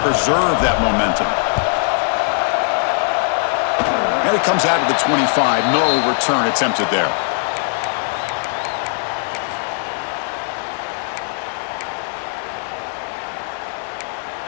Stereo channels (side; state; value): right; silent; digital silence